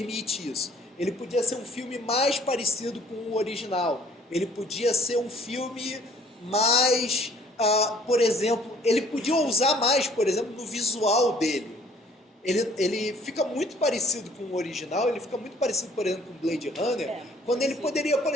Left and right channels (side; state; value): both; normal; correlation 0.57